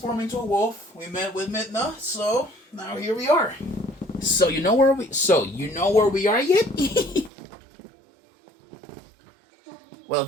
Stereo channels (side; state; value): left; drops out; at 7.3 s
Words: into a wolf. We met with Midna, so now here we are. So you know where we are yet? Well,